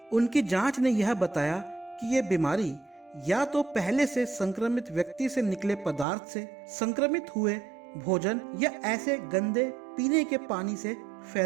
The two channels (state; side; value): drops out; left; at 6.1 s